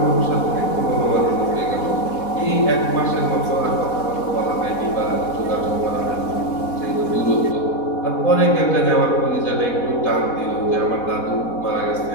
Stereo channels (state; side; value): late; right; 4.1 ms